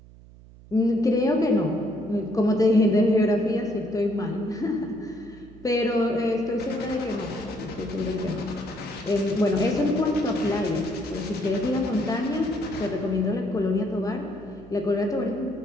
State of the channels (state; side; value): noise; right; hum, 21 dB below the sound